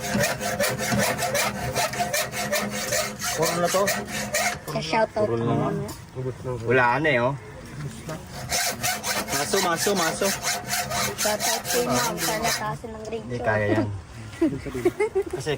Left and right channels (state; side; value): identical; both; correlation 1.00